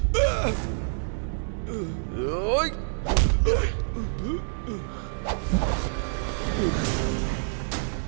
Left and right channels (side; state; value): left; silent; digital silence